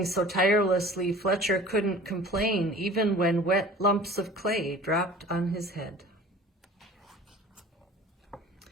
so tirelessly, Fletcher couldn't complain even when wet lumps of clay dropped on his head.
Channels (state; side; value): normal; both; correlation 0.44